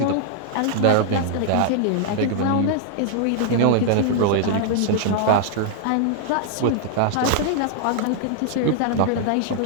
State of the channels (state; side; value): different; both; correlation -0.01